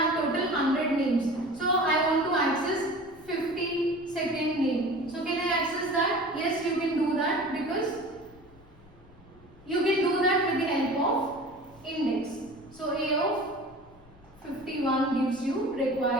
total 100 names. So I want to access 52nd name. So can I access that? Yes, you can do that because you can do that with the help of index. So A of 51 gives you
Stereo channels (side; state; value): left; noise; rumble, 25 dB below the sound